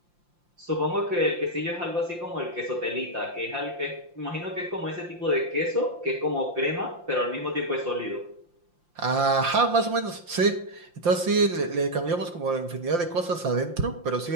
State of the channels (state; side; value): late; left; 5.8 ms